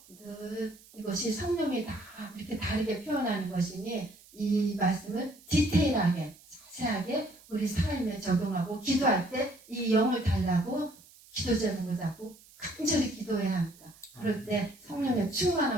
늘 이것이 성령이 다 이렇게 다르게 표현하는 것이니 이 말씀을 디테일하게 자세하게 우리 삶에 적용하고 기도할 때 이 영을 달라고 기도 제목을 잡고 간절히 기도해야 합니다. 그럴 때 성령의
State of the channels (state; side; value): noise; right; hiss, 24 dB below the sound